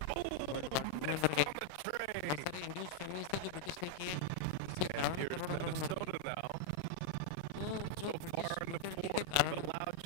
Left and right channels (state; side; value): different; both; correlation -0.01